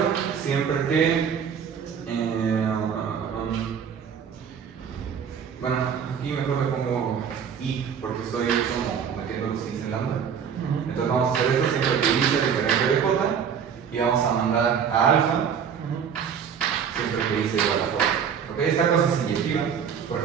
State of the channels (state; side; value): quieter; left; 7.5 dB